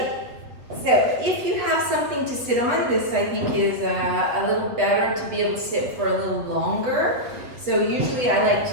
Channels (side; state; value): left; late; 8.3 ms